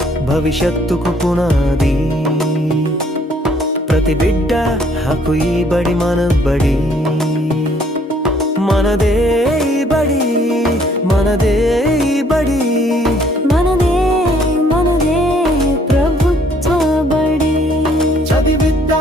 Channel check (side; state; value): both; normal; correlation 0.63